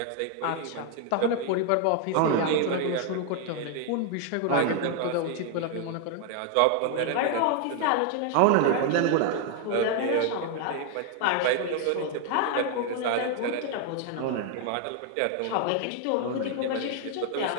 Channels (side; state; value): both; different; correlation 0.01